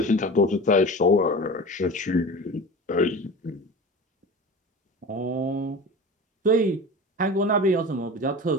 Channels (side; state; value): both; normal; correlation 0.34